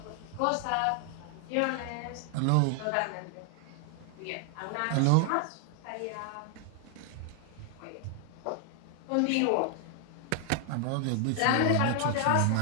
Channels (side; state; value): both; different; correlation 0.00